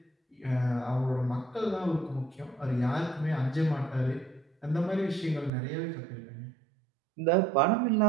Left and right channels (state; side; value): drops out; left; at 5.5 s